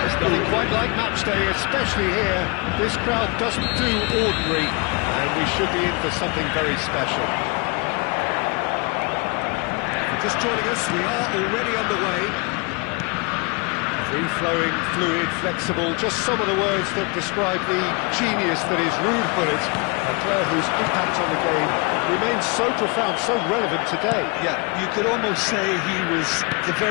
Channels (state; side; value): quieter; right; 30.0 dB